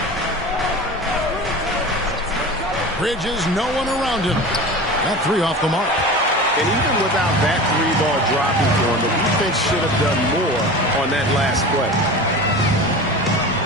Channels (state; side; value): normal; both; correlation 0.33